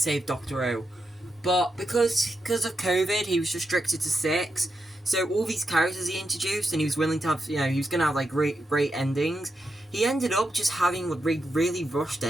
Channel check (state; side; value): normal; both; correlation 0.86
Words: Doctor Who. But because of COVID, he was restricted to 6, so all these characters he introduced, and he was willing to have, you know, he was going to have, like, great endings, he ended up just having really rushed